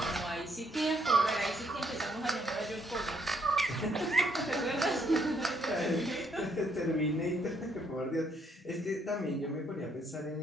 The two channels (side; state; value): both; normal; correlation 0.70